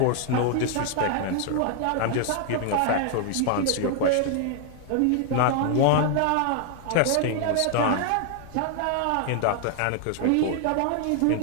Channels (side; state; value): both; different; correlation 0.00